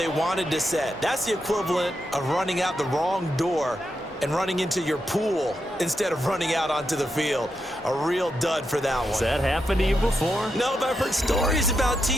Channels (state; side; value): normal; both; correlation 0.85